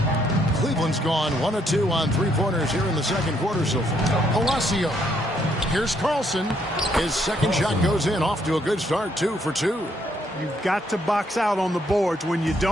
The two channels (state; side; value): normal; both; correlation 0.71